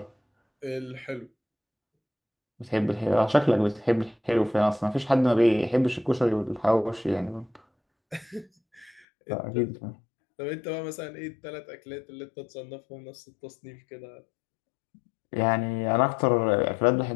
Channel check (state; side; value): drops out; right; at 9.0 s